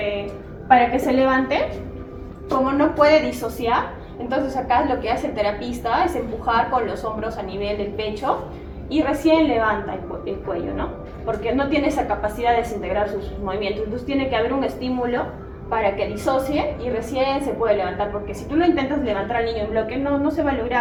para que se levante, como no puede disociar, entonces acá lo que hace el terapista es empujar con los hombros a nivel del pecho y recién levanta el cuello, ¿no? Porque no tiene esa capacidad de desintegrar sus movimientos, entonces tiene que haber un estímulo para que disocie y recién se puede levantar, porque si tú lo intentas levantar al niño en bloque, no se va a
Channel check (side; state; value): both; identical; correlation 1.00